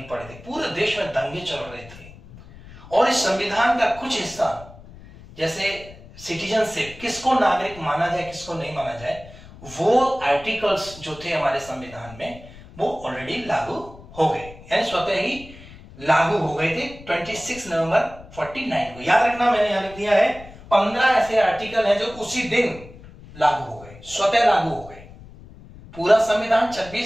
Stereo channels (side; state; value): left; noise; rumble, 19 dB below the sound